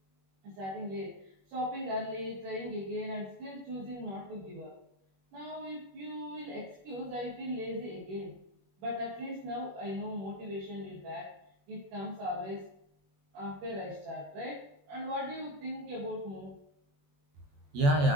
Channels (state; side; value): late; left; 21 ms